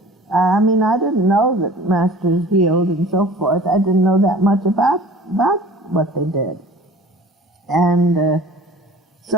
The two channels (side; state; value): both; normal; correlation 0.44